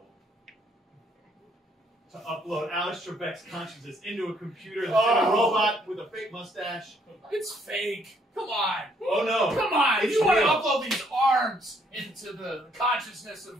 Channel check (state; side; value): normal; both; correlation 0.68